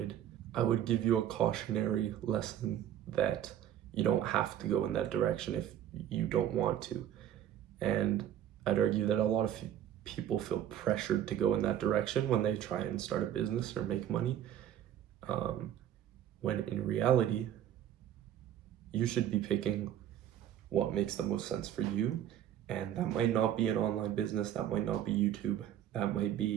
give you a cautionary lesson that you don't have to go in that direction if you don't want to. And I'd argue that a lot of people feel pressured to go in that direction when they try and start a business or make money, when in reality, you should be picking what makes the most sense for you. And that might not be an online business, that might not be YouTube, that might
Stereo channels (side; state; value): left; quieter; 10.9 dB